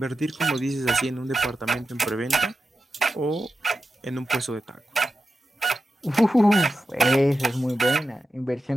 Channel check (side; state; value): both; normal; correlation 0.90